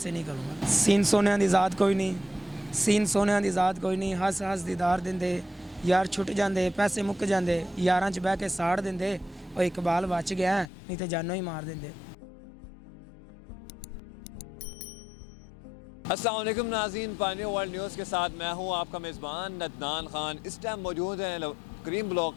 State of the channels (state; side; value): drops out; right; at 10.7 s